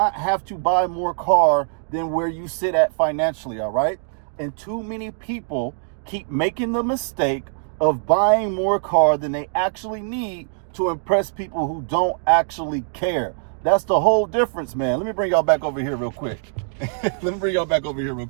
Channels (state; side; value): silent; left; digital silence